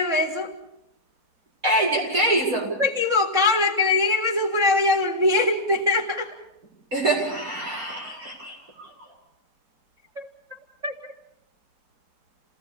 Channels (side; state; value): left; late; 3.7 ms